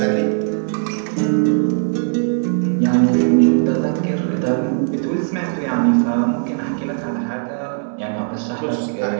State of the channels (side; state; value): left; silent; digital silence